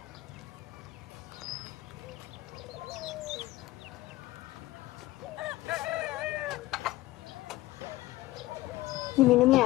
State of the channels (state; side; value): quieter; right; 18.0 dB